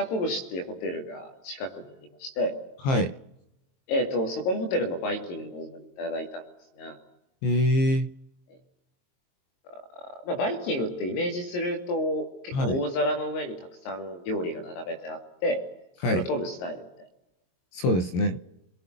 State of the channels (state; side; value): late; right; 22 ms